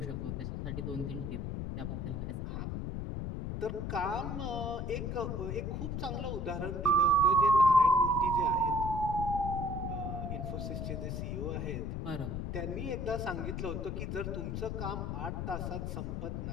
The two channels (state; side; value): noise; left; rumble, 3 dB below the sound